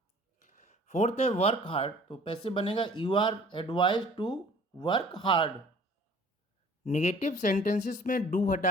Fourth है वर्क हार्ड, तो पैसिव बनेगा you are advise to work hard. Negative sentences में डू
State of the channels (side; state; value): both; normal; correlation 0.51